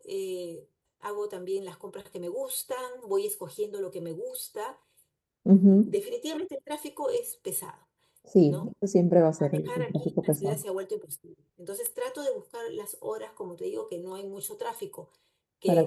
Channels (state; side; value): identical; both; correlation 1.00